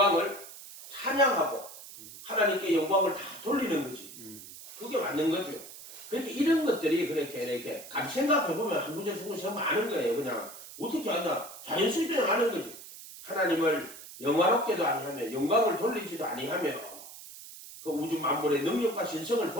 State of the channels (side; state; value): right; noise; hiss, 15 dB below the sound